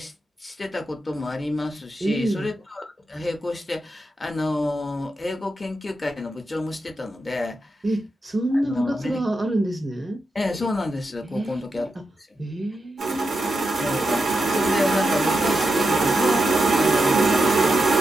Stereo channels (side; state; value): both; normal; correlation 0.87